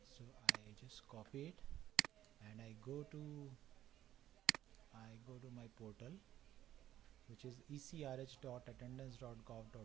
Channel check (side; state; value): left; quieter; 12.5 dB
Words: So I just copy it and I go to my portal, which is